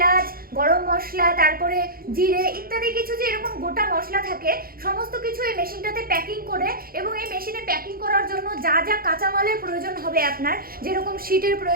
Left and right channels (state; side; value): late; left; 0.43 ms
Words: গরম মশলা, তারপরে জিরে ইত্যাদি কিছু যে এরকম গোটা মশলা থাকে সমস্ত কিছু এই মেশিনটাতে প্যাকিং করে, এবং এই মেশিনে প্যাকিং করার জন্য যা যা কাঁচামালের প্রয়োজন হবে আপনার, যেরকম শিটের